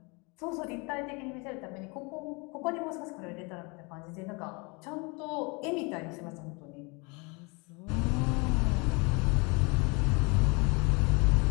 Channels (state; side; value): quieter; right; 29.5 dB